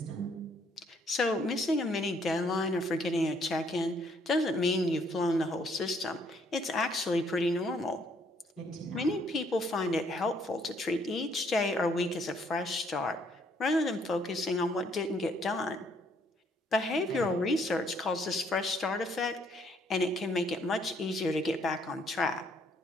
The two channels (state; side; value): normal; both; correlation 0.67